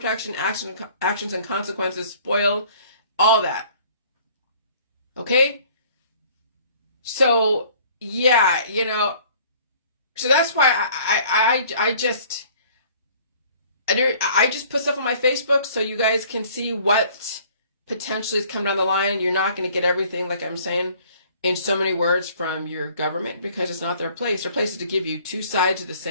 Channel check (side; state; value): both; inverted; correlation -0.54